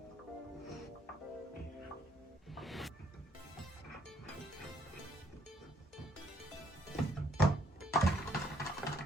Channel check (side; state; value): both; normal; correlation 0.67